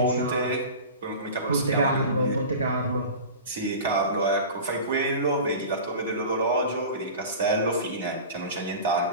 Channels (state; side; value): inverted; both; correlation -0.34